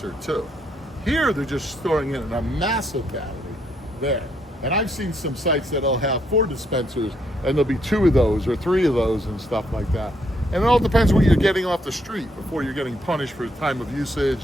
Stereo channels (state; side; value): normal; both; correlation 0.73